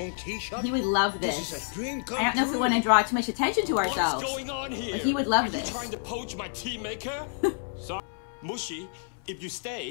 tea shop? He would love this. This is a dream come I don't know if we true. want to draw too much attention to ourselves. What's going on here? But he would love Are this. you trying to poach my tea maker? Sorry, Mushi. If you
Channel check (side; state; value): right; silent; 59 dB below the other